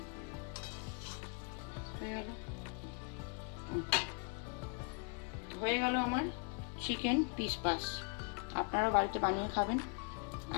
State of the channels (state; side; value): quieter; right; 36.3 dB